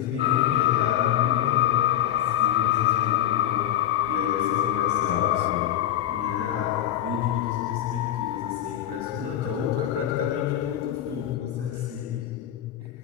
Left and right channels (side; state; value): right; quieter; 11.8 dB